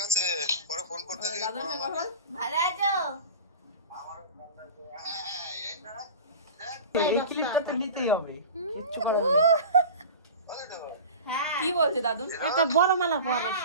আছে, পরে ফোন করতে দিই। দাদুর সঙ্গে কথা বল। ভালো আছো? এই ক্লিপটা তো নিতেই হবে। হ্যাঁ কি বলছে দাদু? একটা বড় মালা পর ওর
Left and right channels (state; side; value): inverted; both; correlation -0.35